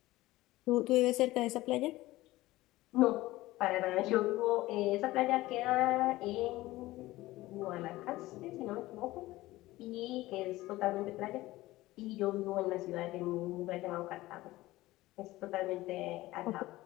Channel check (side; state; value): right; quieter; 17.8 dB